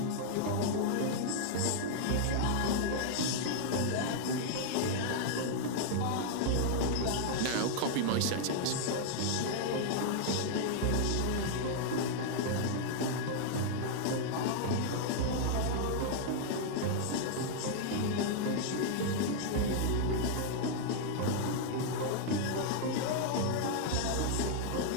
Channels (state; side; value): different; both; correlation -0.01